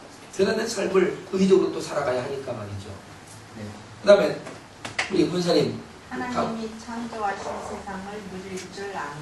그런 삶을 의지적으로 또 살아가야 하니까 말이죠. 그 다음에 우리 권사님, 하나님이 창조하신 세상을 누릴 줄 아는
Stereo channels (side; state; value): both; identical; correlation 1.00